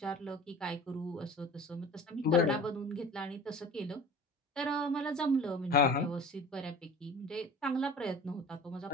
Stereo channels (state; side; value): normal; both; correlation 0.41